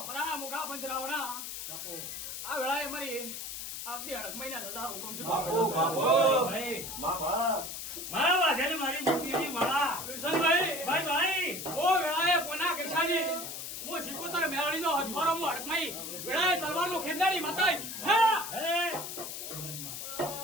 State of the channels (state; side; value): noise; left; hiss, 7 dB below the sound